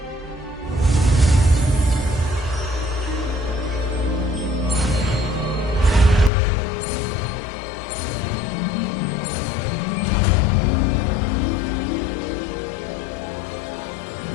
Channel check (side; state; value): right; drops out; at 6.3 s